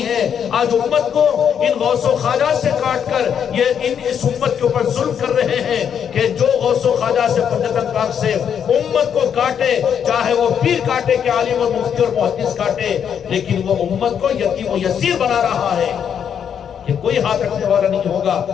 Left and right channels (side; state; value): right; quieter; 8.1 dB